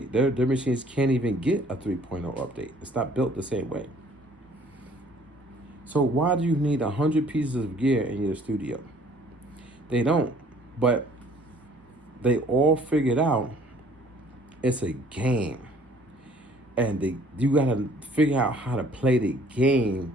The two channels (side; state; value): both; normal; correlation 0.57